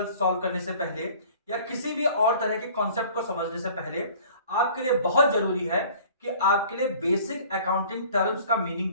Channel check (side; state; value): both; inverted; correlation -0.49